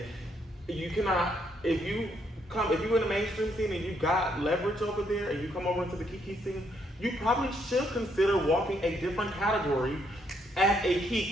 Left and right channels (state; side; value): normal; both; correlation 0.73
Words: you cannot, if you're in the mainstream scene and you got leverage over there and you come over into the Kiki scene, you probably should consider walking a different category as a